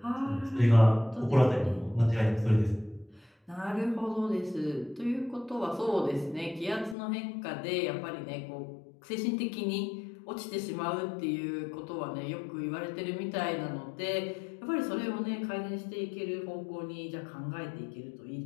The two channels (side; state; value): right; drops out; at 7.0 s